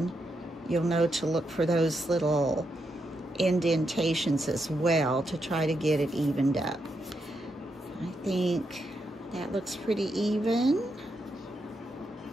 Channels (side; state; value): both; normal; correlation 0.82